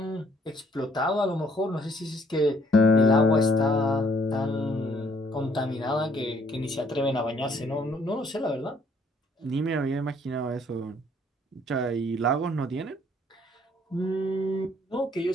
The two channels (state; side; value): normal; both; correlation 0.64